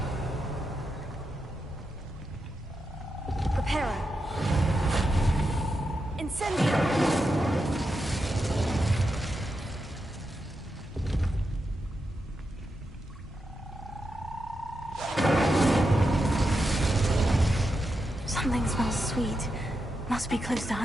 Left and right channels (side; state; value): both; normal; correlation 0.87